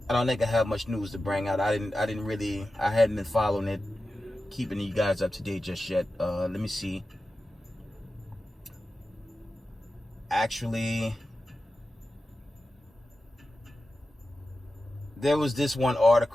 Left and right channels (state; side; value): normal; both; correlation 0.93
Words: I don't think I have much news to bring out. I hadn't been following it, keeping you guys up to date just yet. Let me see. Actually, there was this one